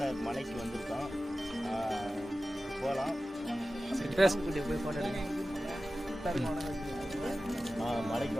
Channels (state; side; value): normal; both; correlation 0.95